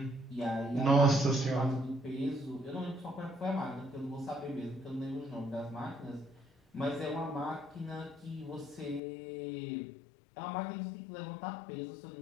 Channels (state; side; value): drops out; right; at 9.0 s